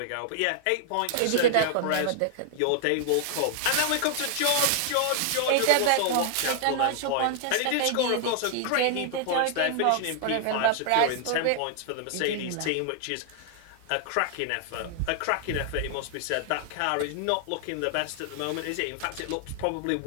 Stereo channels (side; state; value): both; different; correlation -0.01